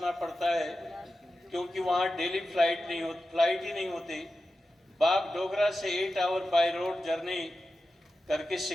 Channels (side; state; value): both; normal; correlation 0.92